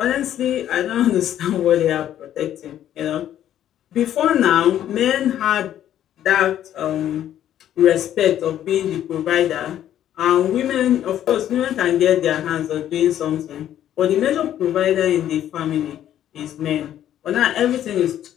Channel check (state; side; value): quieter; right; 11.3 dB